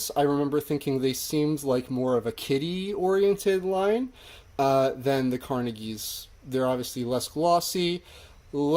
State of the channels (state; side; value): identical; both; correlation 1.00